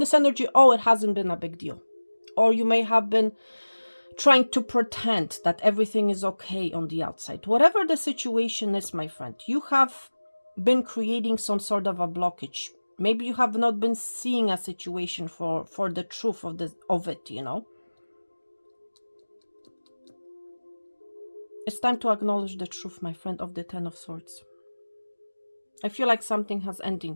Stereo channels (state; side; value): inverted; both; correlation -1.00